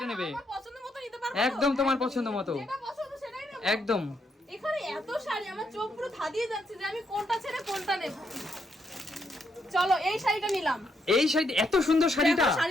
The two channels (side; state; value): both; normal; correlation 0.77